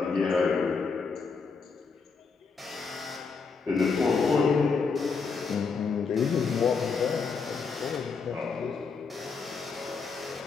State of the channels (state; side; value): quieter; right; 5.0 dB